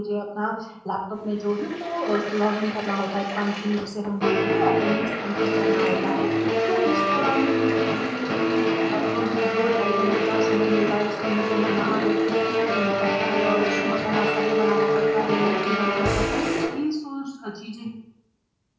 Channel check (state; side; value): identical; both; correlation 1.00